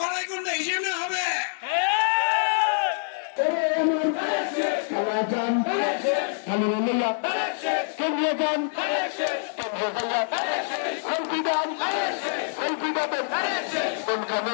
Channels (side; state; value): right; silent; digital silence